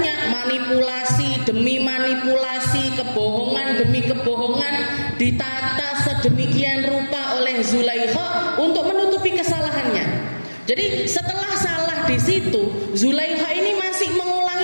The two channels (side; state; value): both; inverted; correlation -1.00